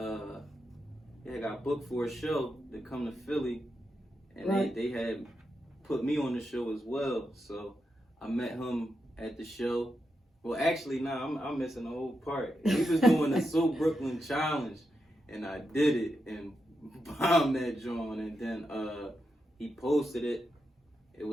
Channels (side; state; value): both; normal; correlation 0.86